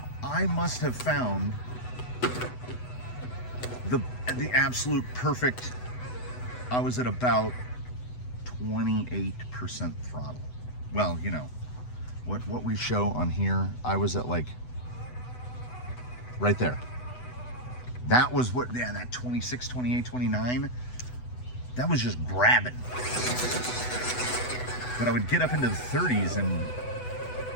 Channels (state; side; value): late; right; 8.0 ms